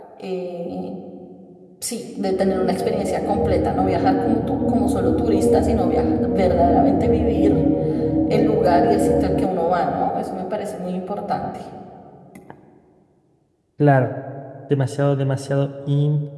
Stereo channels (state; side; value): identical; both; correlation 1.00